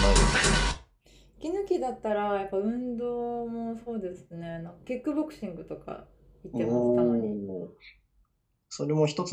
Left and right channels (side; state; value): both; identical; correlation 1.00